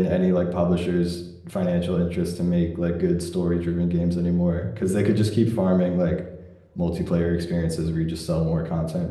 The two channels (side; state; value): both; identical; correlation 1.00